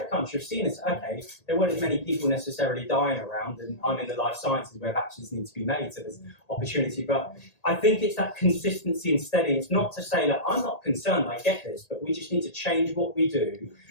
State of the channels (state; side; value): late; right; 1.8 ms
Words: crunch. I've seen this. Okay, there weren't as many people necessarily dying around, and I'm in the life sciences where vaccines need to be made, so there's opportunity. But I think it's that consistency and steady. It's not to say that I'm not concerned, I get this, but we just need to change what we do.